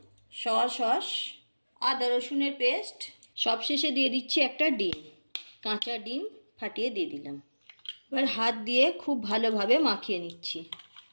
সয়া সস, আদা রসুনের পেস্ট। সবশেষে দিয়ে দিচ্ছি একটা ডিম, কাঁচা ডিম ফাটিয়ে দিয়ে দিলাম। এবার হাত দিয়ে খুব ভালোভাবে মাখিয়ে নিচ্ছি।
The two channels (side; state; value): both; inverted; correlation -1.00